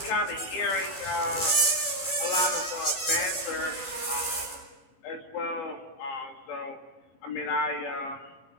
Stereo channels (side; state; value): right; late; 18 ms